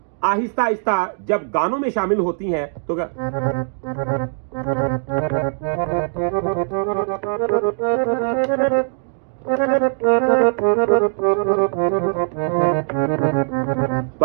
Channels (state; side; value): silent; left; digital silence